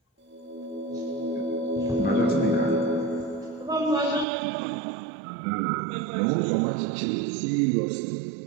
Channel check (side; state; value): left; drops out; at 4.2 s